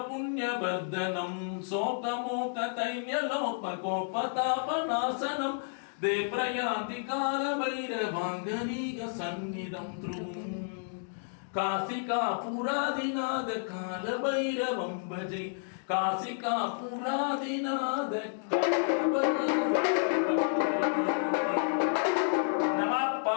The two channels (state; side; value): silent; right; digital silence